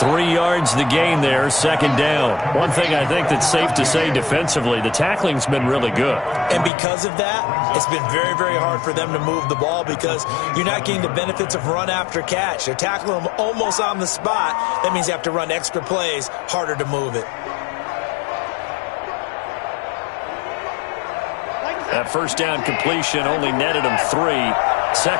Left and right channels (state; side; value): drops out; right; at 6.7 s